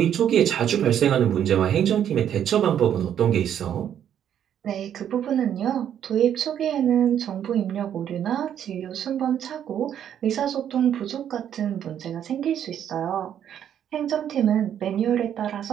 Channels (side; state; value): left; quieter; 9.7 dB